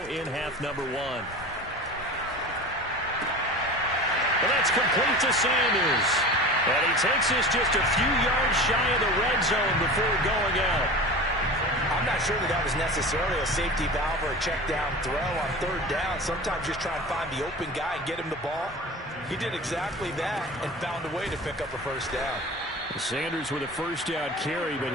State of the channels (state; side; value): normal; both; correlation 0.34